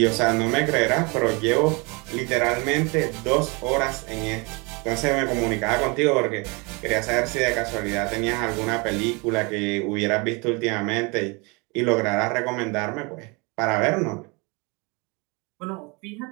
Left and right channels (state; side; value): quieter; left; 29.0 dB